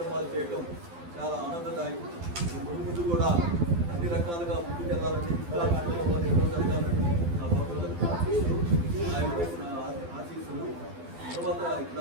చేయటం చాలా ఆనందదాయకం. ముందు కూడా అన్ని రకాలుగా ముందుకెళ్ళాలని ఆయన పెట్టిన ఆశీస్సులు. తర్వాత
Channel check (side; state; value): left; late; 12 ms